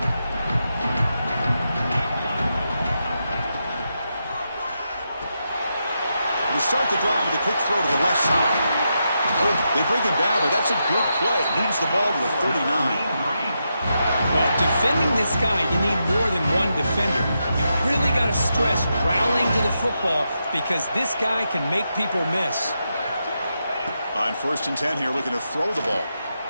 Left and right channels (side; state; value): both; inverted; correlation -0.85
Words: Start the drive with a quick throw to the left side. They bring him down, but that's a good play. Moves the ball to the 39. Well, defending this guy, you need more than one defender. You really got to stress rallying to the football because this guy can make people miss. On 1st and 10 here, looking to throw the ball.